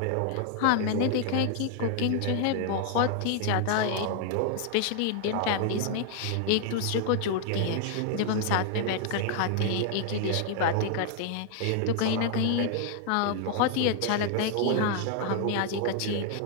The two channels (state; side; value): different; both; correlation 0.00